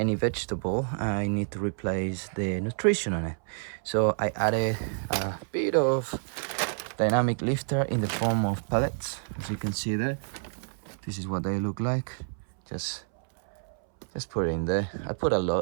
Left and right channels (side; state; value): left; silent; 59 dB below the other